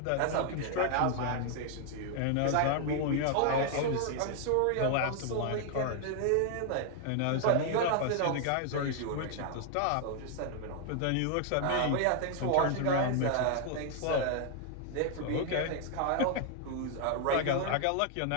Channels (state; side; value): different; both; correlation 0.00